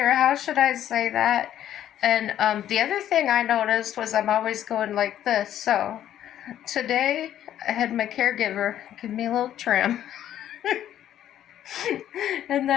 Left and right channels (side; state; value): right; quieter; 11.3 dB